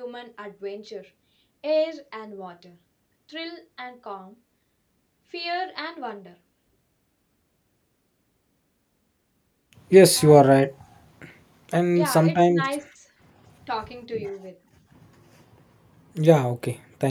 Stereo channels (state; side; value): identical; both; correlation 1.00